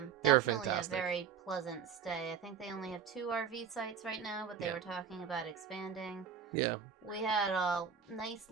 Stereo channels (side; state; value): left; quieter; 7.2 dB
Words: Definitely a very pleasant stay. I think they only have 2 RV sites right now, but they were talking about expanding. Yeah. We had a nice,